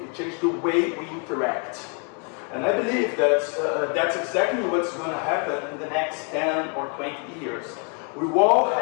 It changed the way we interact. And I believe that that's exactly what's going to happen in the next 10 or 20 years. We all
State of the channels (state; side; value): quieter; right; 38.4 dB